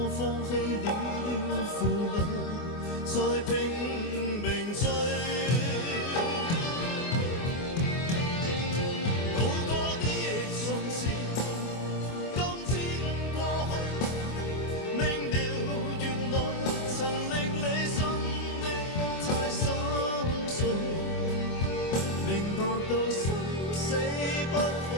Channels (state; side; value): late; right; 24 ms